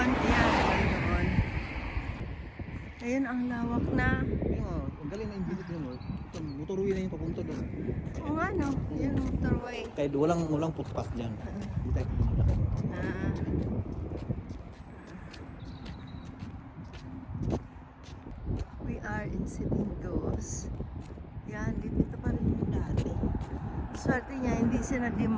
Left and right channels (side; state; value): both; identical; correlation 1.00